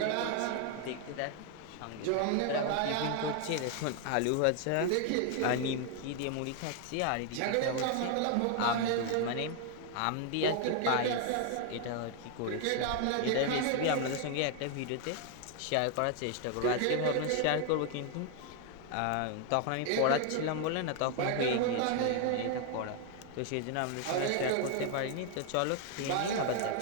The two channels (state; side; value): different; both; correlation 0.00